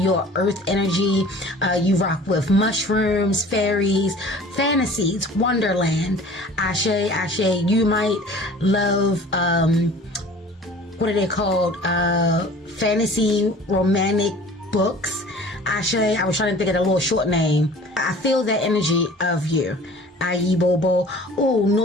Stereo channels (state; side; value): normal; both; correlation 0.46